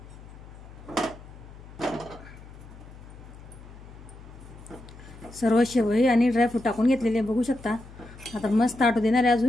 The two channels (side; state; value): left; noise; hum, 18 dB below the sound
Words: सर्व शेवई आणि ड्रायफ्रूट टाकून घेतलेले बघू शकता। आता मस्त आटू देणार आहे